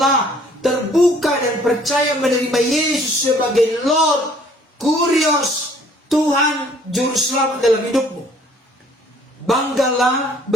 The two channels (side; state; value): both; normal; correlation 0.58